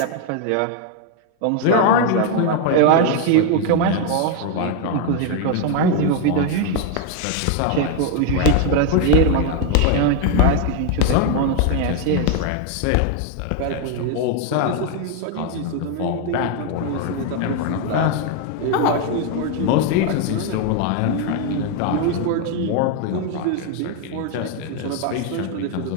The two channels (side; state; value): both; different; correlation 0.01